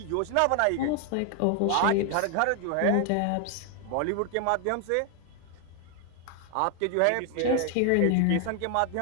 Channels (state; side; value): different; both; correlation 0.00